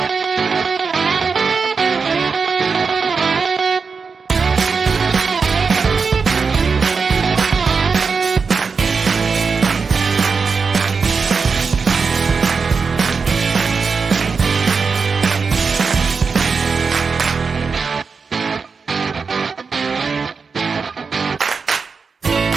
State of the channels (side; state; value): left; quieter; 5.1 dB